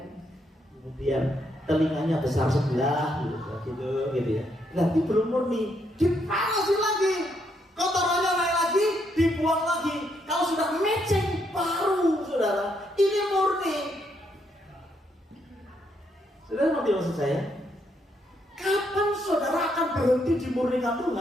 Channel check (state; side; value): normal; both; correlation 0.76